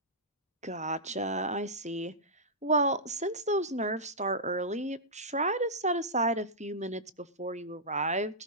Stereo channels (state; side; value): normal; both; correlation -0.13